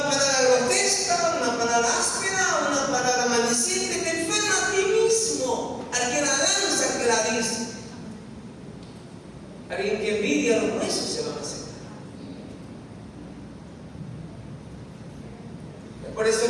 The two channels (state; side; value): identical; both; correlation 1.00